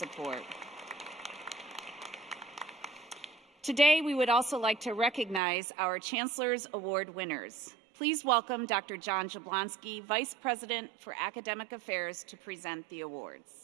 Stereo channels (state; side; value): drops out; left; at 5.4 s